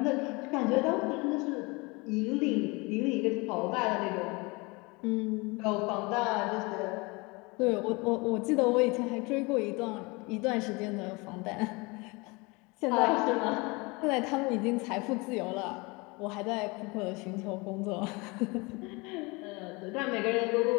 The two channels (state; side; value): quieter; right; 26.5 dB